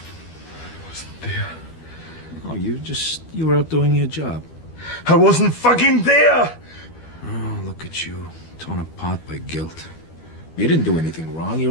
wasn't there. Oh, you were out doing your job. I wasn't fucking there! Oh, look at you, torn apart by guilt. You didn't do anything wrong. You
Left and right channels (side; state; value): right; late; 12 ms